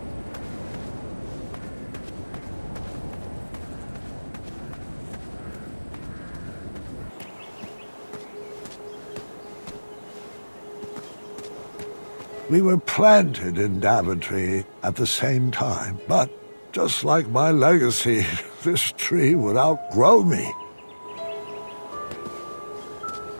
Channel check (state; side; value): inverted; both; correlation -1.00